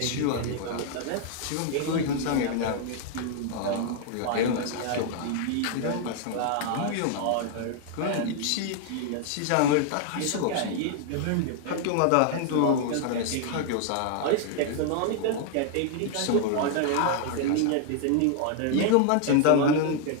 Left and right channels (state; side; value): different; both; correlation 0.00